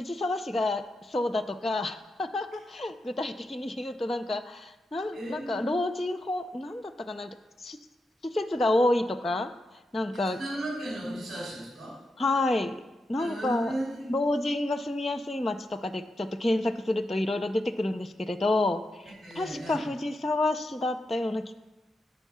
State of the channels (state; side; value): normal; both; correlation 0.86